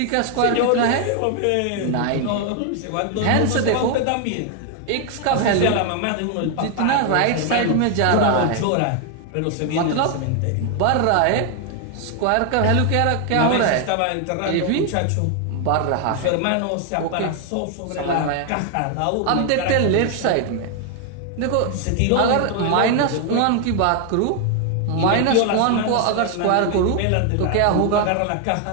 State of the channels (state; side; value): different; both; correlation 0.00